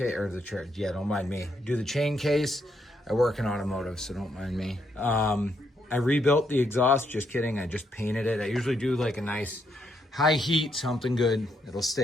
or the, yeah, don't mind me, do the chain case. I work in automotive, so don't mind me. I rebuilt the exhaust, just kidding. I just painted it. I usually do like a nice high heat, something good. It'll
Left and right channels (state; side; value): normal; both; correlation 0.77